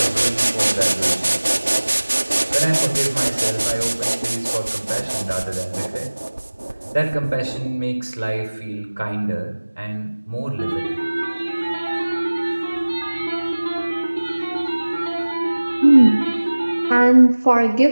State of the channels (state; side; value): inverted; both; correlation -1.00